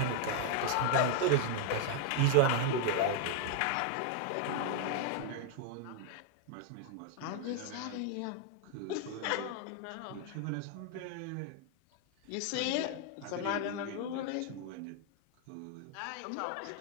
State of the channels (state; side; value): different; both; correlation 0.00